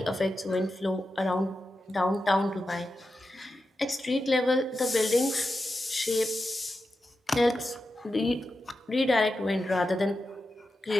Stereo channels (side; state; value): both; normal; correlation 0.90